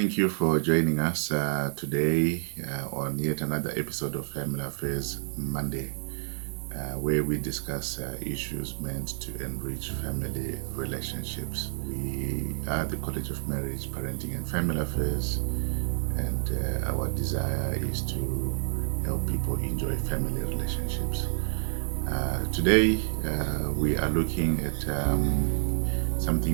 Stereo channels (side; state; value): left; silent; digital silence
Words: Thank you for joining us today on yet another episode of Family Affairs Monday, where we discuss issues meant to enrich family relationships. We are the College of Marriage, Parenting and Family Affairs, and our desire is to help people enjoy family relationships. Today, we are looking at